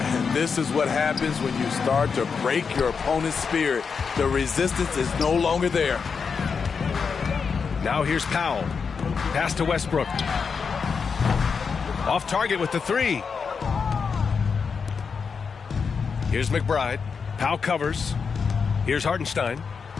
And this is what happens when you start to break your opponent's spirit. The resistance is no longer there. Now here's Powell. Pass to Westbrook. Off target with the three. Here's McBride. Powell covers. Here's Hartenstein.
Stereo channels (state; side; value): quieter; right; 5.7 dB